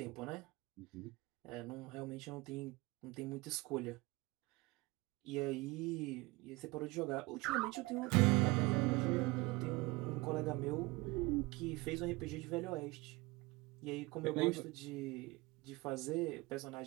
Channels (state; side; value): quieter; left; 22.9 dB